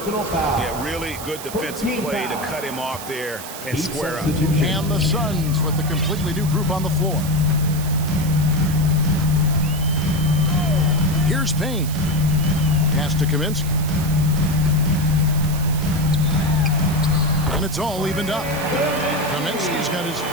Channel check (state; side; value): noise; right; hiss, 11 dB below the sound